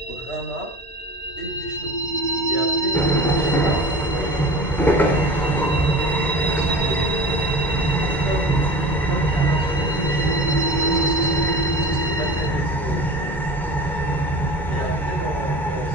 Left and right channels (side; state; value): both; normal; correlation 0.35